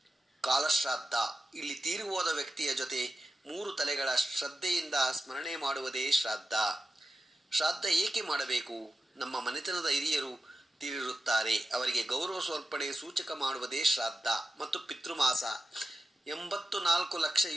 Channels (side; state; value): both; normal; correlation 0.93